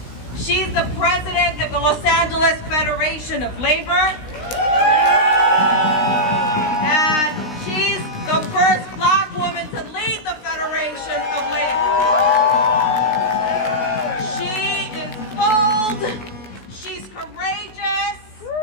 She's the president of the Los Angeles Federation of Labor, and she's the first Black woman to lead the Federation of Labor. She is bold, she's courageous,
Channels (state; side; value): late; right; 16 ms